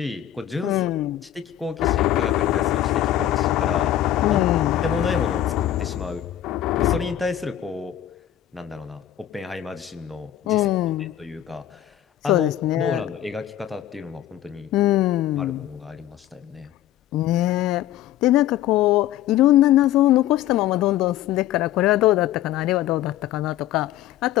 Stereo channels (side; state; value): right; quieter; 12.4 dB